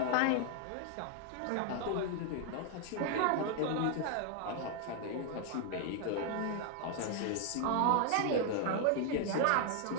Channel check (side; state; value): both; different; correlation 0.00